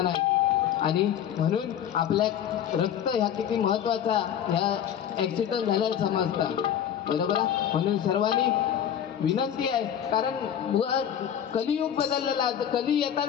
नाही. आणि म्हणून आपल्या रक्त ह्या किती महत्वाचा ह्या ऍक्सिडेंट झाल्याला समजतात, बरोबर आहे. म्हणून सर्वांनी विनंती आहे, कारण कलियुग बदललेला आहे. कली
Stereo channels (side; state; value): right; quieter; 9.6 dB